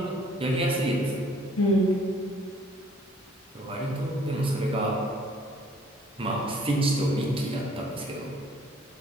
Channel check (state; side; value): normal; both; correlation 0.59